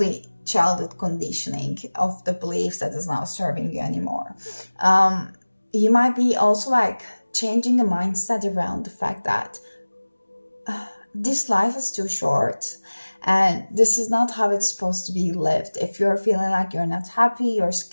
childhood conditioning of the beliefs that is not serving you anymore. You might be also like changing the mindset around the fact that this life is too short, And this is not how it's supposed to be lived. If you're feeling like you're not happy, your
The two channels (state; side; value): inverted; both; correlation -1.00